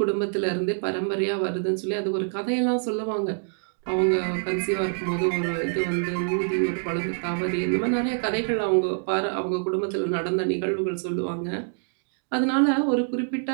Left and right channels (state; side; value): silent; left; digital silence